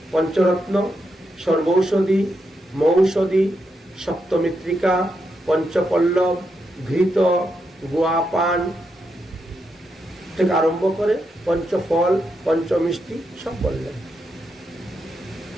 পঞ্চরত্ন, সর্বৌষধি, মৌষধি, সপ্তমিত্রিকা, পঞ্চপল্লব, ঘৃত, গোয়াপান থেকে আরম্ভ করে পঞ্চফল, পঞ্চমিষ্টি সব বললেন।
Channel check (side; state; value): both; normal; correlation 0.83